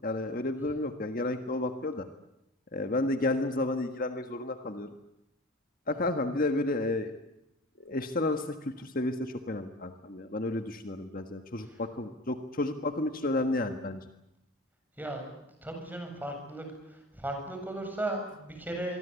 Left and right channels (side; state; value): both; normal; correlation 0.37